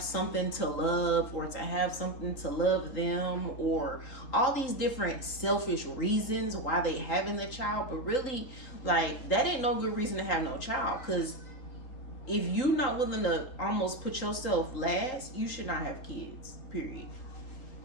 something to love, or to have something to love them, or all these different selfish reasons why they having the child. But really, like, that ain't no good reason to have no child, because if you're not willing to almost put yourself last, you should not have kids, period.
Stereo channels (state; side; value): late; right; 3.8 ms